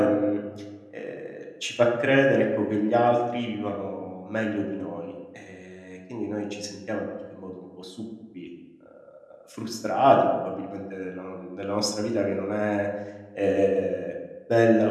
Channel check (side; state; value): both; identical; correlation 1.00